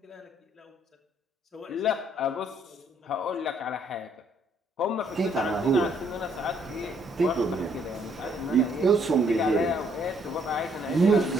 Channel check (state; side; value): normal; both; correlation 0.67